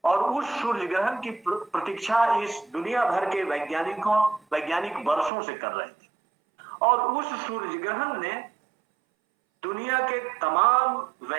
और उस सूर्य ग्रहण की प्रतीक्षा इस दुनिया भर के वैज्ञानिक वर्षों से कर रहे थे और उस सूर्य ग्रहण ने दुनिया के तमाम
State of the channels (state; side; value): drops out; left; at 5.3 s